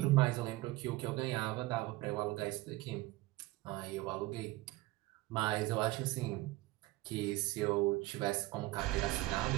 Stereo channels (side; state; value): left; quieter; 19.4 dB